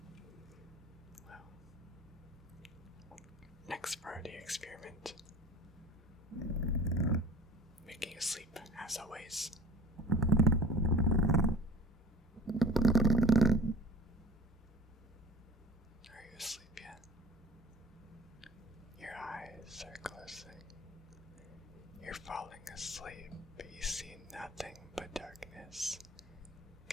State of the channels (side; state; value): both; normal; correlation 0.42